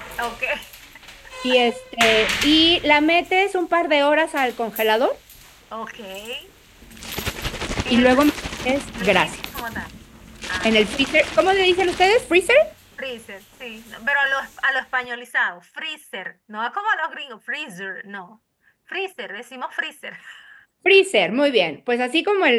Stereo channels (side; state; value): both; identical; correlation 1.00